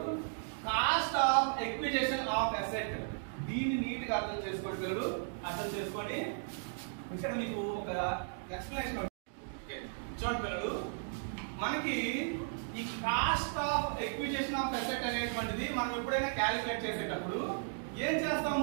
cost of acquisition of asset, దీన్ని నీట్ గా అర్థం చేసుకోండి పిల్లలు. అర్థం చేసుకొని ఇక్కడ మీకు ఒక ఎక్స్ప్లెనేషన్. చూడండి పిల్లలు, మనకి ఈ cost of acquisition of asset అనేటువంటిది మనం ఎప్పుడైనా క్యాలిక్యులేట్ చేసేటప్పుడు ఏం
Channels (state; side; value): silent; left; digital silence